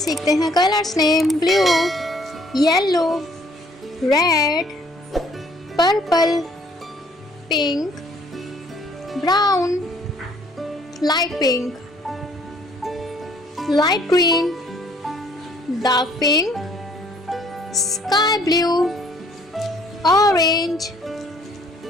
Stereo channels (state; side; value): normal; both; correlation 0.61